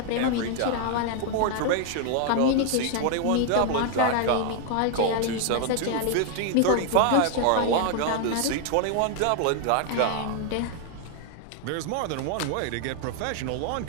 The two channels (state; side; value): different; both; correlation 0.00